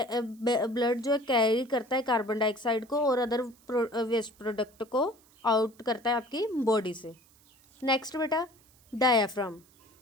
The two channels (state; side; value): noise; right; hiss, 30 dB below the sound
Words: ब्लड जो है कैरी करता है कार्बन डाइऑक्साइड को और अदर वेस्ट प्रोडक्ट को आउट करता है आपकी बॉडी से। नेक्स्ट बेटा डायाफ्राम।